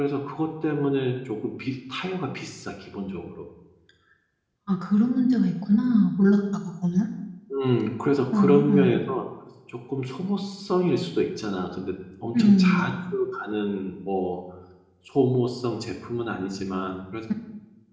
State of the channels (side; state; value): both; identical; correlation 1.00